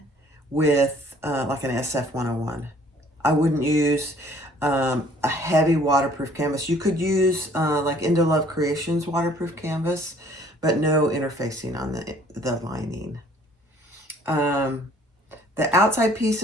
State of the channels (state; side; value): normal; both; correlation 0.57